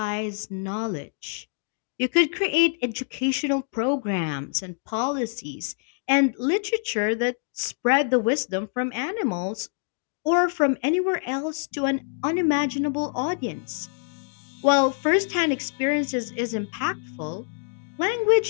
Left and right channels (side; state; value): right; silent; digital silence